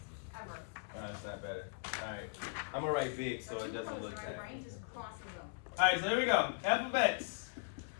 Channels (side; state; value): right; silent; 52 dB below the other